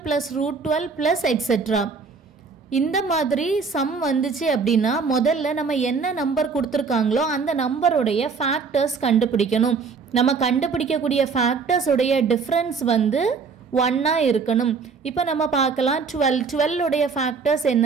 plus root 12 plus etc. இந்த மாதிரி some வந்துச்சு அப்படின்னா முதல்ல நம்ம என்ன நம்பர் கொடுத்துருக்காங்களோ அந்த நம்பருடைய ஃபேக்டர்ஸ் கண்டுபிடிக்கணும். நம்ம கண்டுபிடிக்கக்கூடிய ஃபேக்டர்ஸ் உடைய டிஃப்ரென்ஸ் வந்து 1 இருக்கணும். இப்போ நம்ம பார்க்கலாம் 12 உடைய ஃபேக்டர்ஸ்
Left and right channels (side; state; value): left; quieter; 5.1 dB